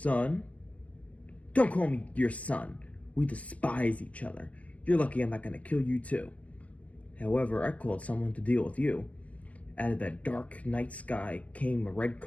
me your son. We despise each other. You're lucky I'm not going to kill you too." However, I called someone to deal with you. Out of that dark night sky came a red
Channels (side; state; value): right; late; 0.067 ms